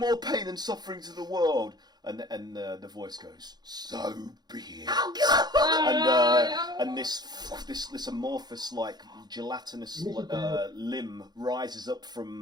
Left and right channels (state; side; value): late; left; 0.20 ms